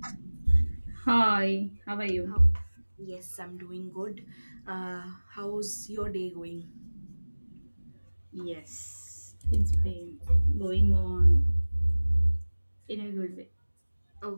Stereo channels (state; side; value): inverted; both; correlation -1.00